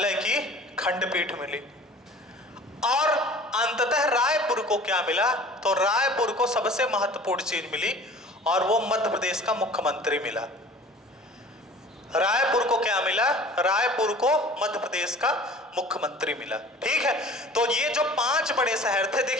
की खंडपीठ मिली। और अंततः रायपुर को क्या मिला, तो रायपुर को सबसे महत्वपूर्ण चीज मिली और वो मध्य प्रदेश का मुख्यमंत्री मिला। रायपुर को क्या मिला, रायपुर को मध्य प्रदेश का मुख्यमंत्री मिला। ठीक है, तो ये जो 5 बड़े शहर थे,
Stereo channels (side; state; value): both; normal; correlation 0.45